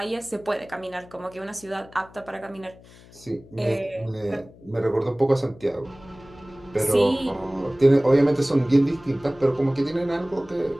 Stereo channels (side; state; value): left; noise; hum, 23 dB below the sound